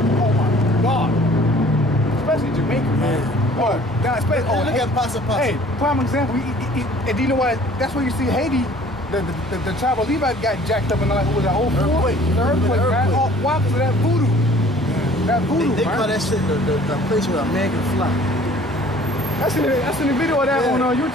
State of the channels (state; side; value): normal; both; correlation 0.52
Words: Oh my God, especially Jamaica, man. Oh, look at Pasa Pasa. Hey, prime example. And do you know what? That's where you see Haiti. The tribe of Levi got jacked up in the earthquake, man. Oh, why? Because of that voodoo. That voodoo, they call that shit the place where a man can fly. That's in the video of that on